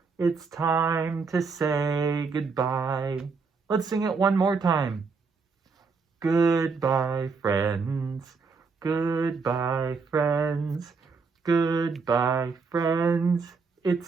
It's time to say goodbye. Let's sing it one more time. Goodbye, friends. Goodbye, friends. Goodbye, friends.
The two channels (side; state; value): left; quieter; 4.8 dB